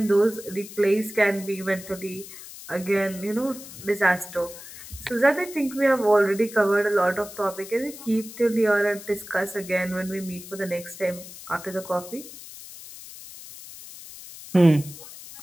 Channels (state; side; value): noise; left; hiss, 15 dB below the sound